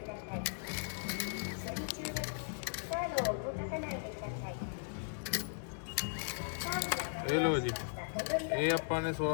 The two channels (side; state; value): right; silent; digital silence